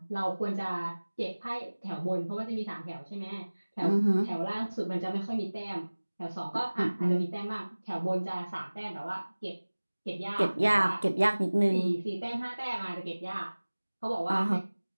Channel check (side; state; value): both; inverted; correlation -1.00